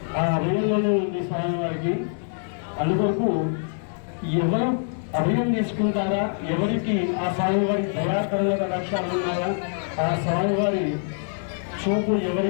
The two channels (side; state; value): right; silent; digital silence